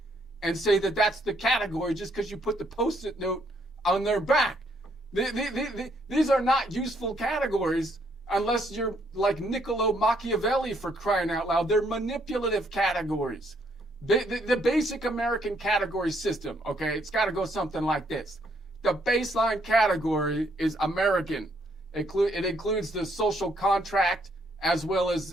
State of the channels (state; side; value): normal; both; correlation 0.70